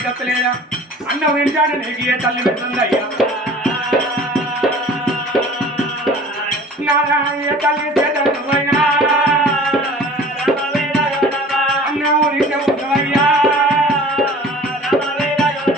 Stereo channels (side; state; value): both; normal; correlation 0.45